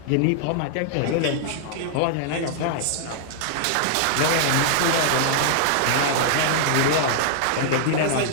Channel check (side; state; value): both; different; correlation -0.01